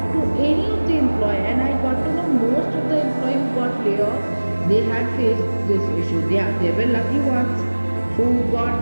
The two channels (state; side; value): inverted; both; correlation -1.00